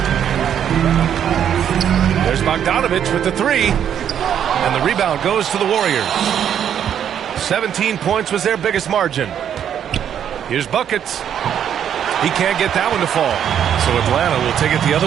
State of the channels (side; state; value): left; quieter; 9.2 dB